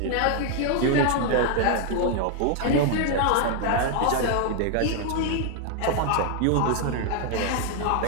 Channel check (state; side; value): different; both; correlation 0.00